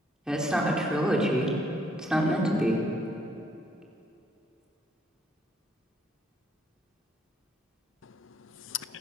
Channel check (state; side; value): normal; both; correlation 0.68